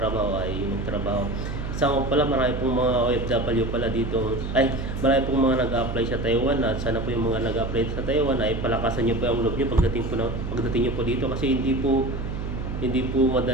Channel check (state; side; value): noise; right; hum, 5 dB below the sound